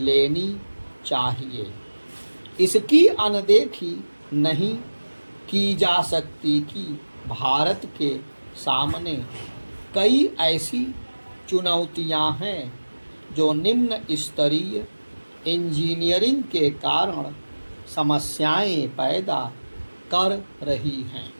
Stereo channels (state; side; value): inverted; both; correlation -1.00